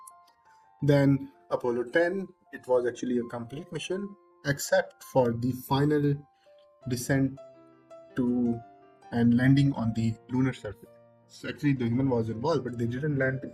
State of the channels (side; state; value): both; identical; correlation 1.00